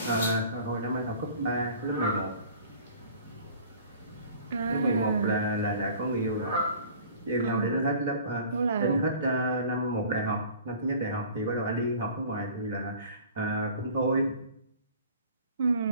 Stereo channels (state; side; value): inverted; both; correlation -0.47